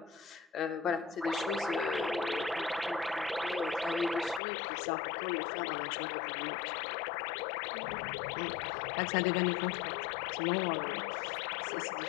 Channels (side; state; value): right; drops out; at 4.4 s